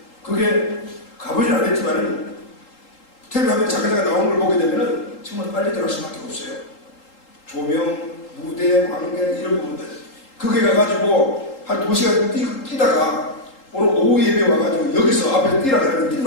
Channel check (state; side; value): late; right; 3.8 ms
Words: 그게 가보진 않았지만은 텔레비전에 잠깐 나오는 걸 보게 되면은 정말 빨리 들어갈 수밖에 없어요. 조명, 무대, 관객 이런 부분들 그게 가가지고 한 2시간 뛰다가 오늘 오후 예배 와가지고 여기서 앞에 뛰라 그러면 뛸